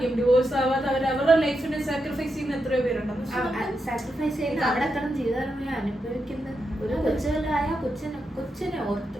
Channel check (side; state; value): both; normal; correlation 0.85